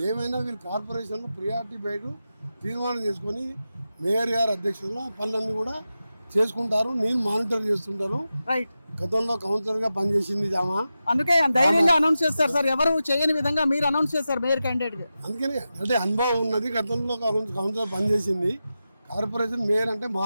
ఏమైనా వీళ్ళు కార్పొరేషన్లో ప్రియారిటీ బయట తీర్మానం చేసుకొని మేయర్ గారి అధ్యక్షతలో పనులన్నీ కూడా చేసుకుంటారు. నేను మానిటర్ చేస్తుంటాను. రైట్. గతంలో కౌన్సిలర్ గా పనిచేసింది ఆమె. అందుకే ధైర్యంగా అనౌన్స్ చేస్తారు సార్, ఎవరు చేయని విధంగా మీరు అనౌన్స్ చేస్తారు మేయర్ క్యాండిడేట్. అందుకని అంటే అనుభవం ఉన్నది. గతంలో కౌన్సిలర్ పనిచేసింది. కార్పొరేషన్ మేయర్ అంటే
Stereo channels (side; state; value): both; inverted; correlation -0.92